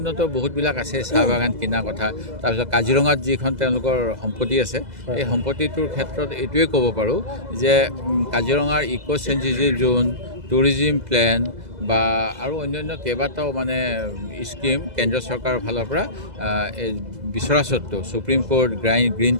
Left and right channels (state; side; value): late; left; 2.0 ms